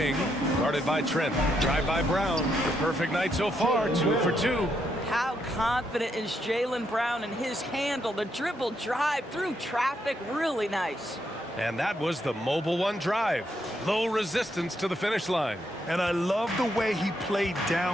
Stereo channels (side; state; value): both; normal; correlation 0.77